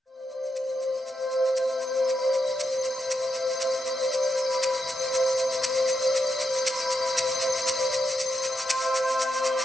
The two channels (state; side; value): normal; both; correlation 0.84